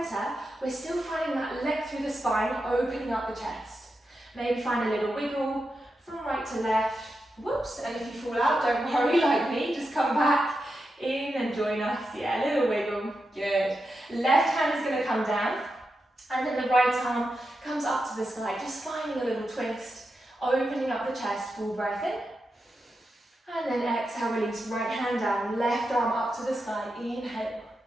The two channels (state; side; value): normal; both; correlation 0.88